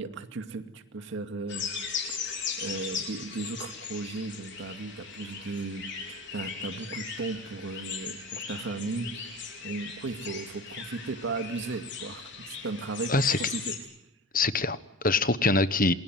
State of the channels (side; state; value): both; normal; correlation 0.34